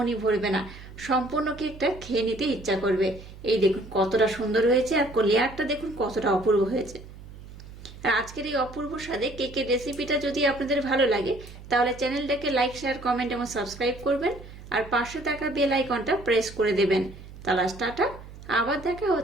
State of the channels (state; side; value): noise; right; hum, 16 dB below the sound